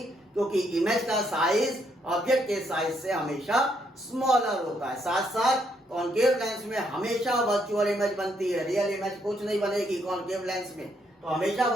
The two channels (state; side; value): normal; both; correlation 0.73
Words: क्योंकि इमेज का साइज ऑब्जेक्ट के साइज से हमेशा स्मॉलर होता है। साथ साथ कॉन्केव लेंस में हमेशा वर्चुअल इमेज बनती है, रियल इमेज कुछ नहीं बनेगी कॉन्केव लेंस में, तो हमेशा